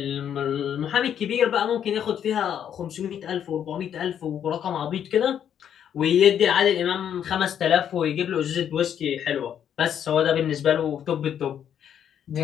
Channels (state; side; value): quieter; right; 9.2 dB